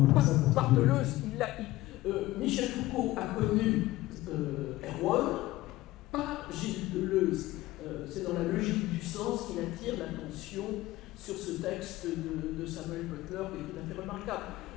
Bartheleuze, Michel Foucault a connu Erwan, pas Gilles Deleuze. C'est dans la logique du sens qu'il attire l'attention sur ce texte de Samuel Butler qui est tout à fait remarquable.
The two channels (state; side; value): quieter; right; 17.3 dB